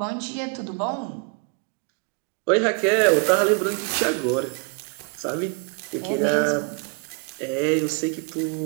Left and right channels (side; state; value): left; quieter; 33.7 dB